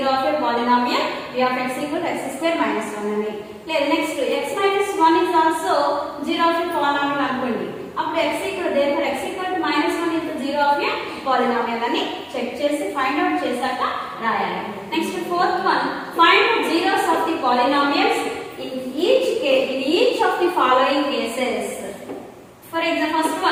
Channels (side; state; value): both; identical; correlation 1.00